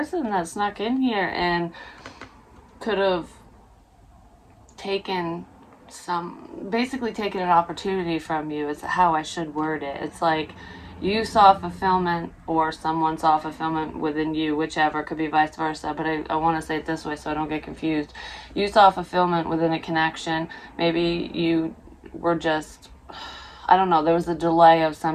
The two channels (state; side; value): identical; both; correlation 1.00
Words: that snuck in here and could have basically taken an opportunity from you. It's how I should word it. It's like you saw fulfillment, or someone saw fulfillment within you, whichever. Could be vice versa, but I want to say it this way so I don't get confused. You saw fulfillment within a connection. Maybe you were just, I don't know, there was a delay of